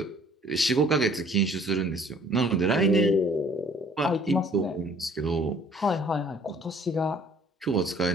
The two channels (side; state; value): both; normal; correlation 0.57